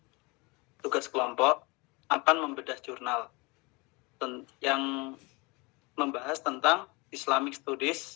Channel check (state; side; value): quieter; right; 26.8 dB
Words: tugas kelompok akan membedah jurnal yang membahas tentang Islamic